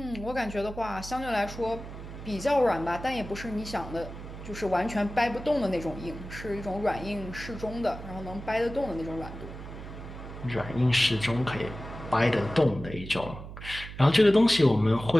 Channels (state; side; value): noise; right; hum, 12 dB below the sound